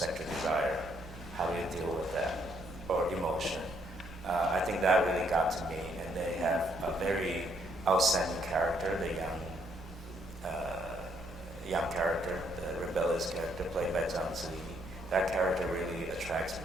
desire. How do you deal with that? Or emotion. I think that really got to me, and they have a very outstanding character, the young character, the rebellious character played by Zhang Ziyi. That character really attracts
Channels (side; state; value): both; normal; correlation 0.71